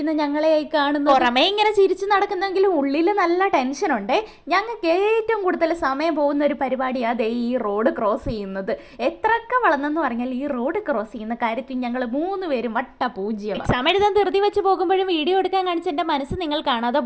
ഞങ്ങളെയായി കാണുന്നു. പുറമേ ഇങ്ങനെ ചിരിച്ചു നടക്കുന്നെങ്കിലും ഉള്ളിൽ നല്ല ടെൻഷനുണ്ട്. ഞങ്ങൾക്ക് ഏറ്റവും കൂടുതൽ സമയം പോകുന്ന ഒരു പരിപാടിയാണ് ഈ റോഡ് ക്രോസ് ചെയ്യുന്നത്. എത്രയൊക്കെ വളർന്നെന്ന് പറഞ്ഞാൽ ഈ റോഡ് ക്രോസ് ചെയ്യുന്ന കാര്യത്തിൽ ഞങ്ങൾ 3 പേരും വട്ട പൂജ്യം. എക്സാം എഴുതാൻ ധൃതി വെച്ച് പോകുമ്പോഴും വീഡിയോ എടുക്കാൻ കാണിച്ച എൻ്റെ മനസ്സ് നിങ്ങൾ കാണാതെ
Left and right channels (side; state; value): both; identical; correlation 1.00